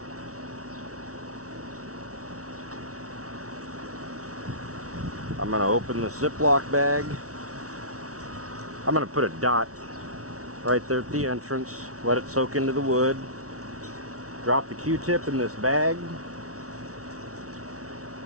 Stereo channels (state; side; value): late; left; 0.65 ms